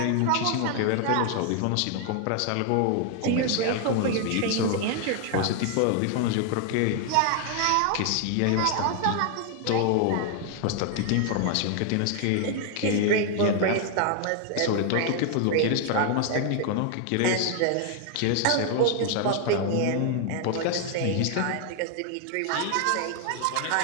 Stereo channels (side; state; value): both; different; correlation 0.00